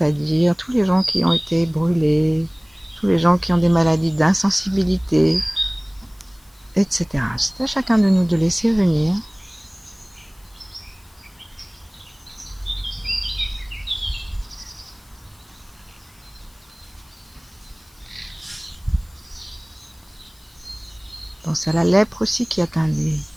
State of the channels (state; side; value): noise; left; hiss, 30 dB below the sound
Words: tous les gens qui ont été brûlés, tous les gens qui ont des maladies d'insensibilité, etc. C'est à chacun de nous de laisser venir. Pense à la lèpre aussi qui atteint des